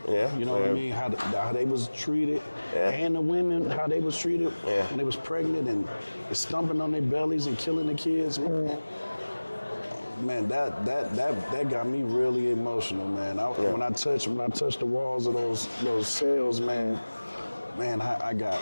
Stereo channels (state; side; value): inverted; both; correlation -1.00